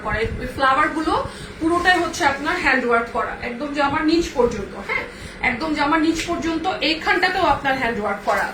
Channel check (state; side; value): identical; both; correlation 1.00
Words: করা। এই ফ্লাওয়ার গুলো পুরোটাই হচ্ছে আপনার হ্যান্ড ওয়ার্ক করা, একদম জামার নিচ পর্যন্ত, হ্যাঁ একদম জামার নিচ পর্যন্ত। এইখানটাতেও আপনার হ্যান্ড ওয়ার্ক করা